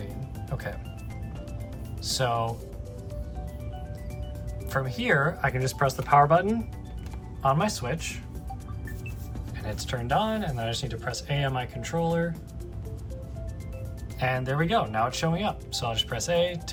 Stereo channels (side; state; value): both; identical; correlation 1.00